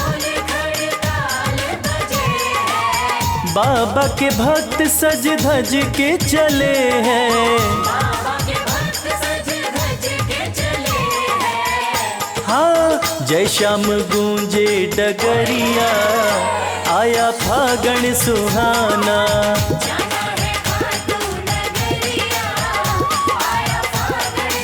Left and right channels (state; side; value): identical; both; correlation 1.00